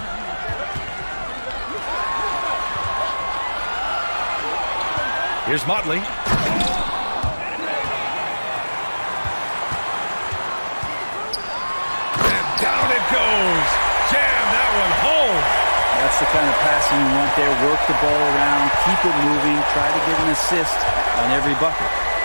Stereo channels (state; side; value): inverted; both; correlation -1.00